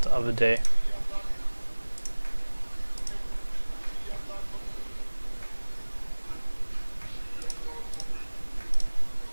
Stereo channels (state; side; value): inverted; both; correlation -1.00